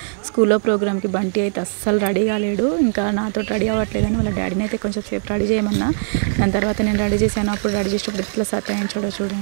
స్కూల్లో ప్రోగ్రామ్కి బంటి అయితే అస్సలు రెడీ కాలేడు. ఇంకా నాతో రెడీ అవ్వట్లేదని వాళ్ళ డాడీని అయితే కొంచెం సేపు రెడీ చేయమన్నా. దాని తర్వాత నేను రెడీ చేశాను. అప్పుడు రెడీ చేసేటప్పుడు ఇట్లా సతాయించాడో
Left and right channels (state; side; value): silent; left; digital silence